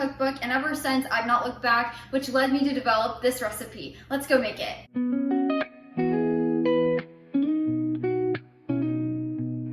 and ever since I've not looked back, which led me to develop this recipe. Let's go make it.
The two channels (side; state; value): both; identical; correlation 1.00